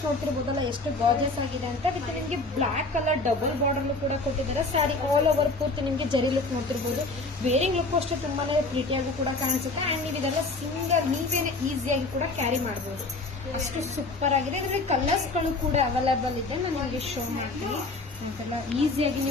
ನೋಡ್ತಿರ್ಬೋದಲ್ಲ ಎಷ್ಟು ಗಾರ್ಜಿಯಸ್ ಆಗಿದೆ ಅಂತ. ವಿತ್ ನಿಮಗೆ ಬ್ಲಾಕ್ ಕಲರ್ ಡಬಲ್ ಬಾರ್ಡರ್ ಕೂಡ ಕೊಟ್ಟಿದ್ದಾರೆ. ಸ್ಯಾರಿ ಆಲ್ ಓವರ್ ಪೂರ್ತಿ ನಿಮಗೆ ಜರಿ ಲುಕ್ ನೋಡ್ತಿರ್ಬೋದು. ವೇರಿಂಗ್ ಲುಕ್ ಅಷ್ಟು ತುಂಬಾನೇ ಪ್ರೀಟಿಯಾಗಿ ಕೂಡ ಕಾಣಿಸುತ್ತೆ. ಅಂಡ್ ನೀವು ಇದೆಲ್ಲ ಸಿಂಗಲ್ ನೀವೇನೆ ಈಸಿಯಾಗಿ ಕೂಡ ಕ್ಯಾರಿ ಮಾಡಬಹುದು. ಅಷ್ಟು ಸೂಪರ್ ಆಗಿದೆ. ಇದರಲ್ಲಿ ಕಲರ್ಸ್ ಗಳು ಕೂಡ ಅವೈಲೇಬಲ್ ಇದೆ. ನಾನು ನಿಮಗೆ ಶೋ ಮಾಡ್ತೀನಿ. ಅಂತೆಲ್ಲ ಈಸಿಯಾಗಿ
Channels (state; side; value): quieter; right; 3.3 dB